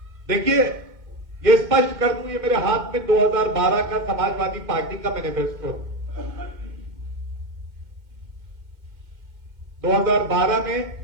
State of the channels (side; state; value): left; late; 2.1 ms